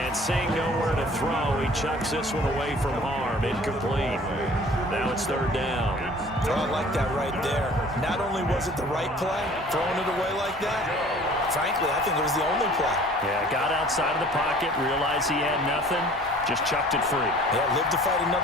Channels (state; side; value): normal; both; correlation 0.50